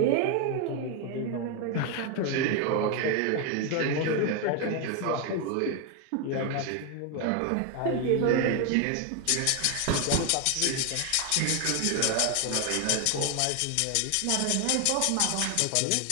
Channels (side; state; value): both; different; correlation 0.01